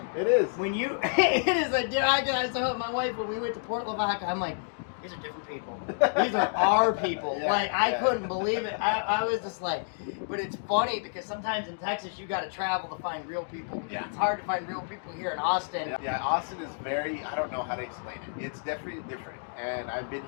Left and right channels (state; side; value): silent; right; digital silence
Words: It is. When you, it is a. I told my wife when we went to Port Lavaca, I'm like, these are different people. These are our people. Yeah, like I yeah. couldn't believe it. I was just like, but it's funny because sometimes in Texas you got to travel to find real people. Yeah. It's hard to find real people here in Austin. Yeah, Austin is very, I don't know how to explain it. It's definitely different. And I've been